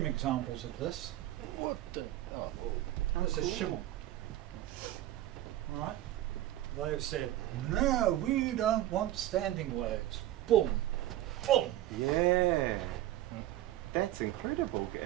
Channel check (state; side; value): quieter; left; 14.2 dB